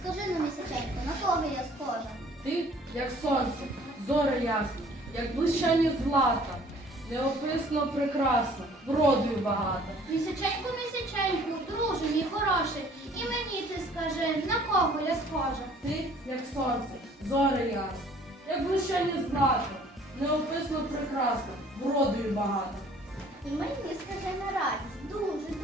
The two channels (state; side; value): normal; both; correlation 0.55